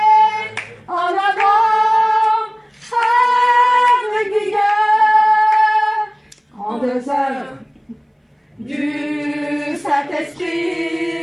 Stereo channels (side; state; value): both; identical; correlation 1.00